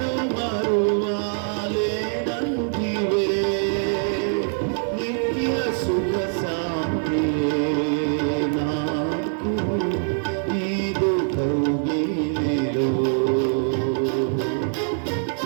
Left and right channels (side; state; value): left; silent; 63 dB below the other